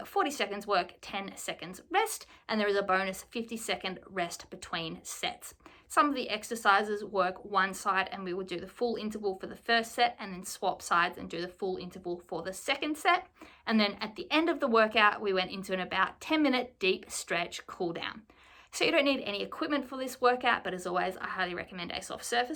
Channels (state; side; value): identical; both; correlation 1.00